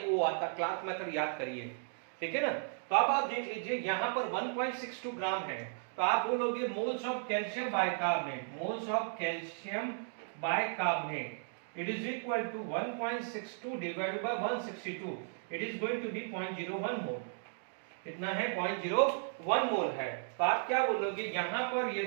आता, क्लार्क मेथड याद करिए। ठीक है ना, तो अब आप देख लीजिए यहाँ पर 1.62 ग्राम है, तो आप बोलोगे moles of calcium bicarbonate, moles of calcium bicarbonate it is equal to 1.62 divided by 162, it is going to be 0.01 mole. कितना है, 0.01 मोल है। तो आप क्या बोलोगे, यहाँ पर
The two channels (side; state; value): left; silent; digital silence